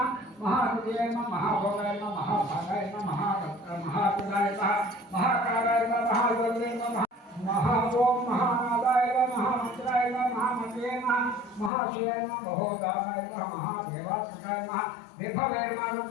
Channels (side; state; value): right; drops out; at 11.7 s